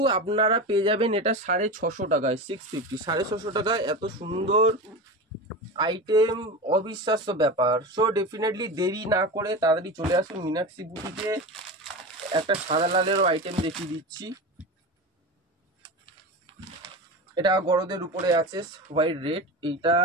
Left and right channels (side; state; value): both; normal; correlation 0.25